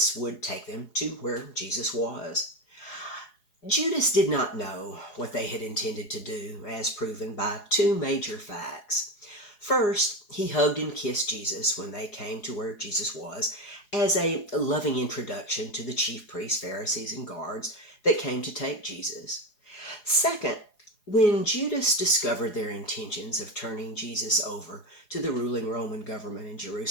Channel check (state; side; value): late; right; 4.8 ms